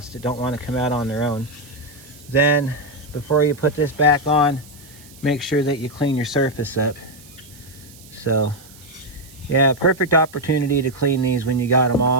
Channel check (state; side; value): noise; right; hiss, 22 dB below the sound